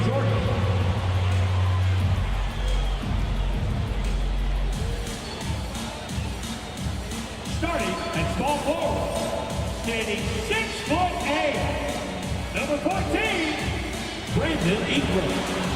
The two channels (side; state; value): both; identical; correlation 1.00